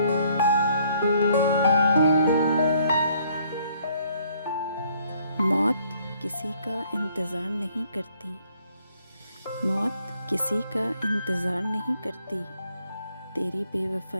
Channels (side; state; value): both; inverted; correlation -0.65